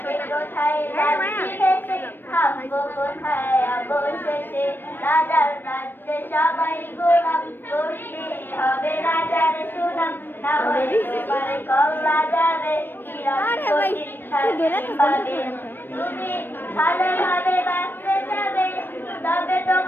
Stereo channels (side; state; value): right; late; 0.095 ms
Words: কে কোথায় যাচ্ছি ভেসে, থামবো কোথায় অবশেষে। রাজার রাজ্যে সবাই গোলাম, করতে হবে রাজার সুনাম, না হলে তোমার কল্লা যাবে, বিরাট কঠিন শাস্তি পাবে। তুমি ভালোভাবে বাঁচতে যাবে, তবে